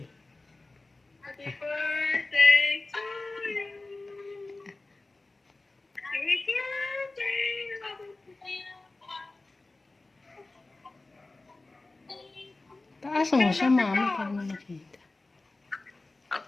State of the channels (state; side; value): quieter; right; 3.2 dB